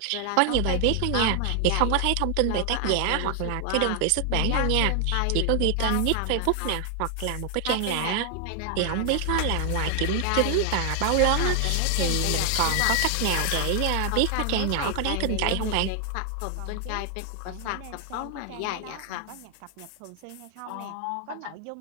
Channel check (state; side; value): different; both; correlation 0.00